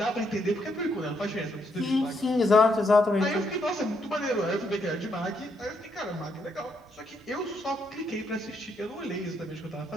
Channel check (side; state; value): both; normal; correlation 0.75